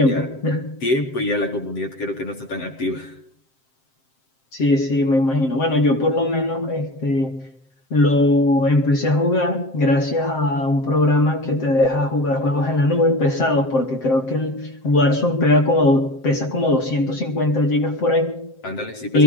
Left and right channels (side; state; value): right; late; 7.6 ms